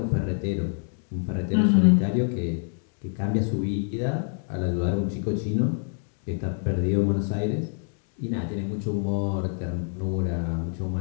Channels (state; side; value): silent; right; 56 dB below the other